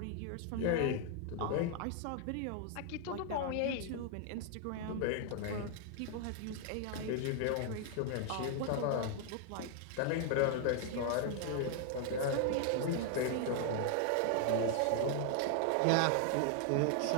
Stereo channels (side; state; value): both; different; correlation 0.00